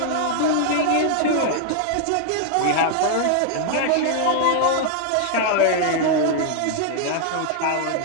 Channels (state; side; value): different; both; correlation -0.01